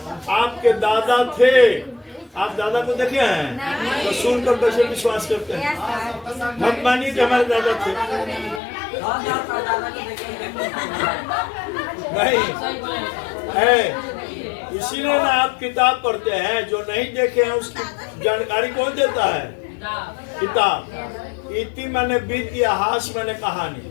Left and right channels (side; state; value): right; drops out; at 8.6 s